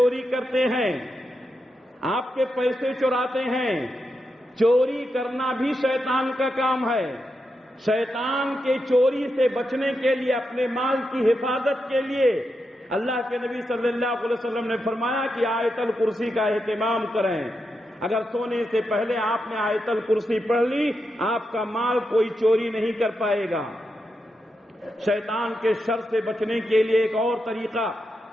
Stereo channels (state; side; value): normal; both; correlation 0.86